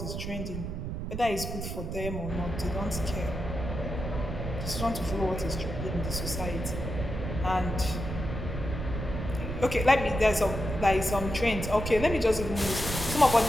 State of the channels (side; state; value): right; noise; rumble, 5 dB below the sound